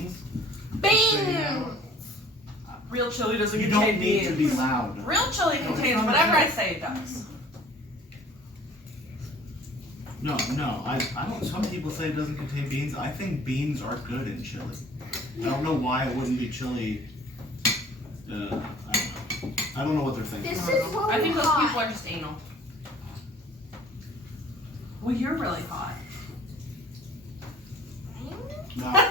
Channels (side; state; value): both; normal; correlation 0.50